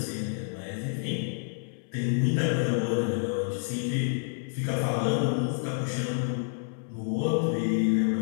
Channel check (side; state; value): right; silent; 57 dB below the other